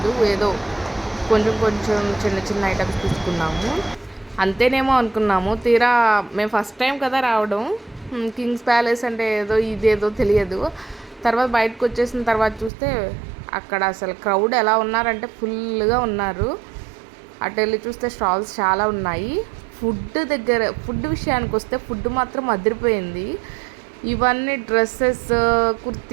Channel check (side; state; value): left; drops out; at 12.7 s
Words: ఏదో కొంచెం కొంచెం చిన్న చిన్న ఐటమ్స్ తీసుకున్నాము, అంతేనేమో అనుకున్నాము. తీరా మేము ఫస్ట్ టైం కదా రావడం, కింగ్స్ ప్యాలెస్ అంటే ఏదో ఇదేదో తెలియదు. తర్వాత బయటకు వచ్చేసిన తర్వాత చూస్తే అక్కడ అసలు క్రౌడ్ ఎలా ఉన్నారంటే ఫుల్గా ఉన్నారు. అటు వెళ్ళి చూస్తే స్టాల్స్ చాలా ఉన్నాయి. ఫుడ్ విషయానికి వస్తే ఫుడ్ మాత్రం అదిరిపోయింది. ఇవన్నీ డ్రెస్సెస్,